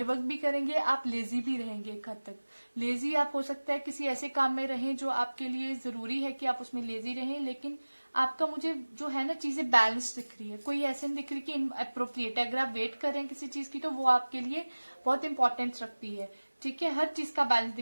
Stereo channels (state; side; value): inverted; both; correlation -1.00